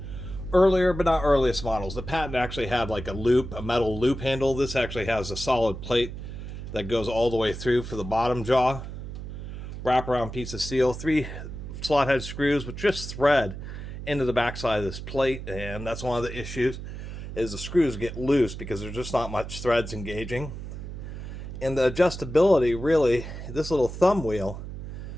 earlier, but not earliest models. The patent actually had like a loop, a metal loop handle. This actually has a solid plate that goes all the way through for the bottom jaw. Wraparound piece of steel, 3 slot head screws with just thread into the backside of this plate, and that's one of the issues, is the screws get loose because there's just not much threads engaging. And the adjustability, really, this little thumb wheel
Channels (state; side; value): noise; right; hum, 9 dB below the sound